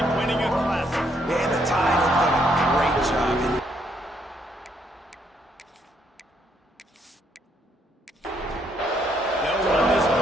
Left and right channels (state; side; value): normal; both; correlation 0.72